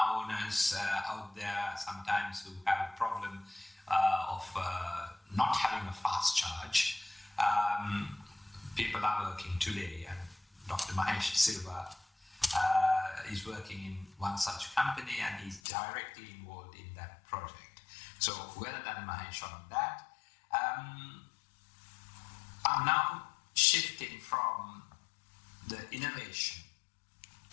owners out there sometimes who have a problem of not having a fast charge, people are working today, and Dr. Mahesh De Silva is working in one such company, and he's directly involved in that project. So well done, Mahesh, on that. I'm now shifting from the innovation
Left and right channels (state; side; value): drops out; right; at 15.6 s